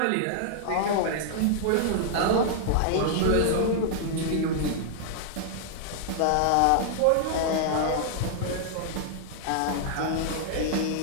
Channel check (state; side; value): different; both; correlation -0.01